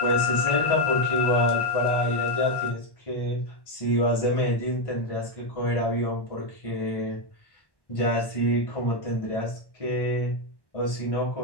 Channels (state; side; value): late; right; 1.1 ms